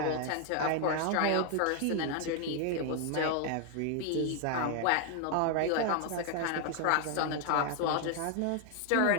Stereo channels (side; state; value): both; different; correlation 0.00